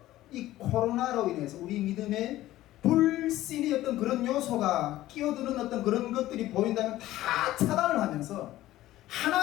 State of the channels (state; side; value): quieter; right; 15.3 dB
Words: 이 코로나로 인해서 우리 믿음에 불신이 어떤 그런 요소가 끼어드는 어떤 그런 것들이 보인다면 다 차단을 하면서